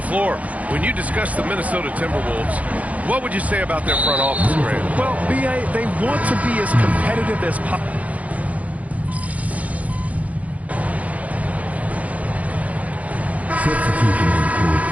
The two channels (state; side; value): late; left; 0.069 ms